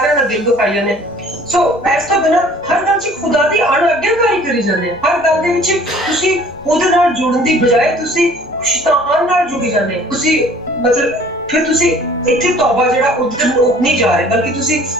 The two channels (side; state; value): both; normal; correlation 0.52